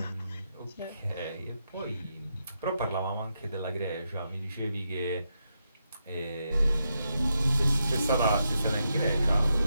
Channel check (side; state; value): both; inverted; correlation -0.84